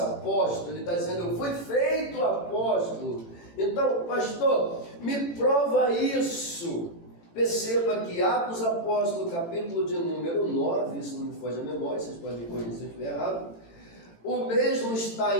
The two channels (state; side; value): late; right; 18 ms